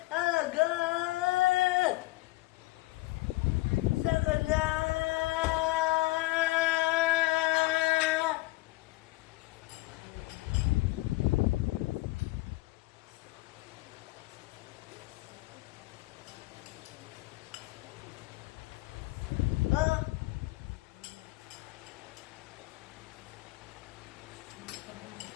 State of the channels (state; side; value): quieter; right; 19.8 dB